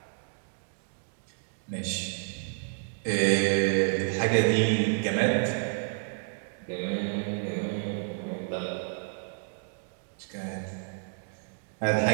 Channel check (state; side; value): silent; left; digital silence